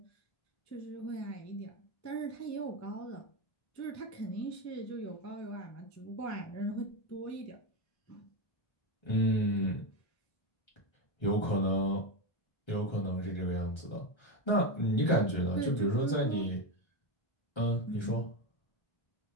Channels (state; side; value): late; right; 1.3 ms